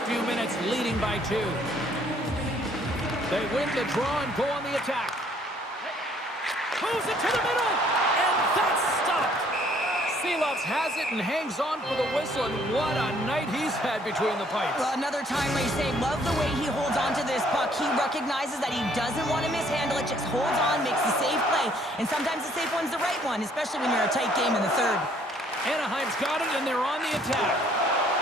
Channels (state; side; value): normal; both; correlation 0.62